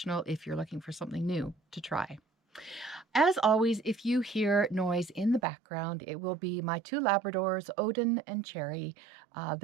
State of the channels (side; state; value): left; drops out; at 5.4 s